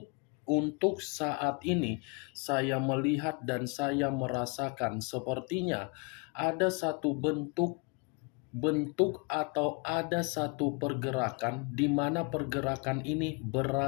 untuk saat ini saya melihat dan saya merasakan sepertinya ada satu bentuk atau ada satu pergerakan, di mana pergerakan ini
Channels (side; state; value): right; quieter; 31.7 dB